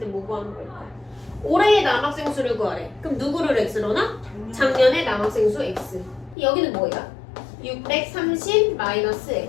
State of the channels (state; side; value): drops out; right; at 6.4 s